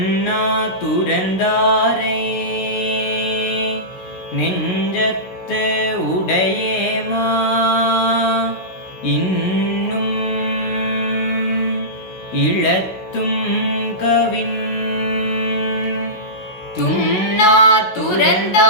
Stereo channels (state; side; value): late; right; 16 ms